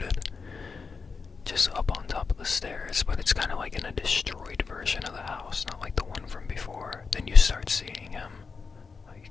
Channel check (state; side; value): quieter; right; 5.0 dB